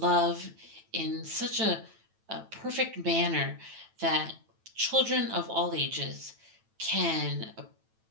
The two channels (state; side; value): late; left; 9.1 ms